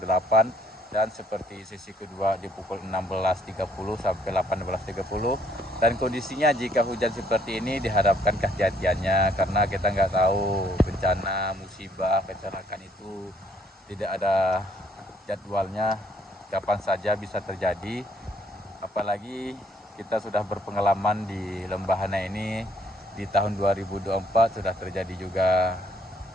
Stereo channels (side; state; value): both; normal; correlation 0.66